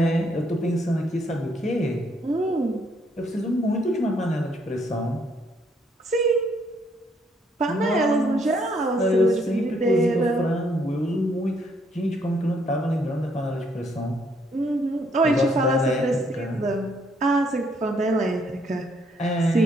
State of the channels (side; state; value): both; normal; correlation 0.70